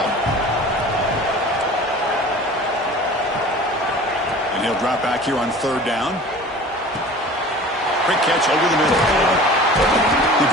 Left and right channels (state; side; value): normal; both; correlation 0.42